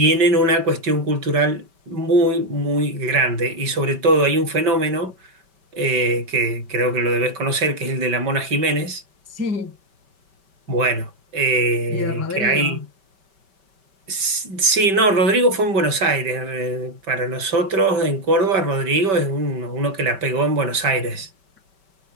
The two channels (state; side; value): late; left; 5.2 ms